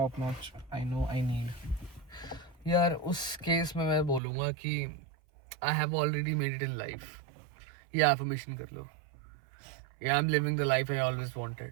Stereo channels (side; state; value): left; drops out; at 4.2 s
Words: notch. I know I need. यार उस केस में मैं बोलूँगा कि I have already made it in life, ये affirmation कर लो, या I am living the life I always